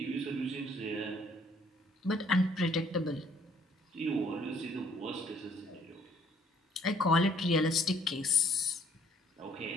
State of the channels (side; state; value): both; normal; correlation 0.63